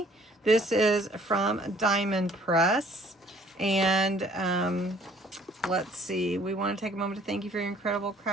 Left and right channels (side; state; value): both; normal; correlation 0.58